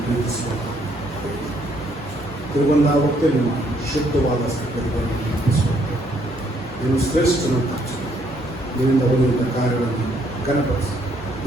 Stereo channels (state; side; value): normal; both; correlation 0.69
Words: ಪ್ರೀತಿಸುವ ತಿರುಗೊಂಡ ಹೊತ್ತೆ ನಿಮ್ಮ ಶುದ್ಧವಾದ ಸ್ಥಿತಿಗಳನ್ನು ನೆನಪಿಸುವಂತೆ ನೀನು ಶ್ರೇಷ್ಠನಂತ ನಿನ್ನಿಂದ ಹೊಂದಿದ ಕಾರ್ಯಗಳನ್ನು ಘನಪಡಿಸಿ